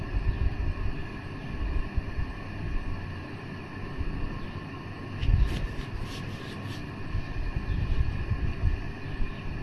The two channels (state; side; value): identical; both; correlation 1.00